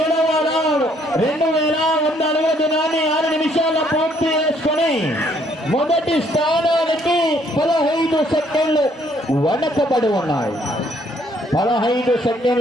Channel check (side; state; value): both; normal; correlation 0.66